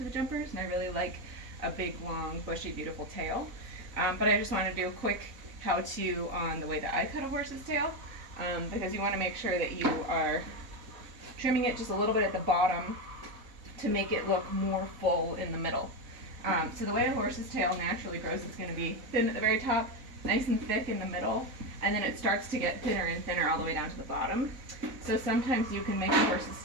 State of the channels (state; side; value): late; left; 4.1 ms